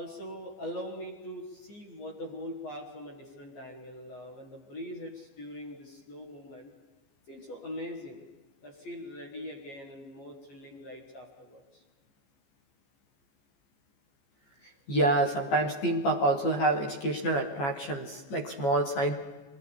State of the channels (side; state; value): right; late; 14 ms